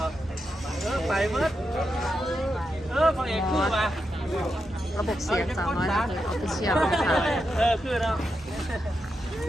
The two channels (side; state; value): both; normal; correlation 0.86